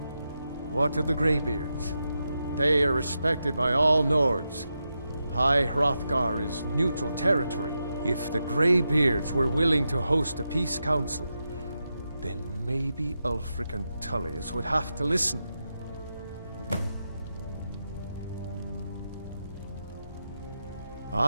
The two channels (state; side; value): inverted; both; correlation -0.88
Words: What of the Greybeards? They are respected by all Nords. High Hrothgar is neutral territory. If the Greybeards were willing to host a peace council, then maybe Ulfric and Tullius would have to listen.